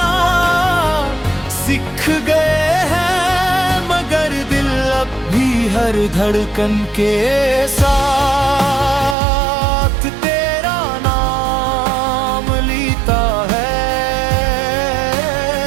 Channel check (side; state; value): left; drops out; at 9.2 s